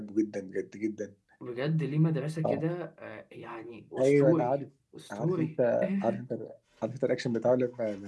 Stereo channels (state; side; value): identical; both; correlation 1.00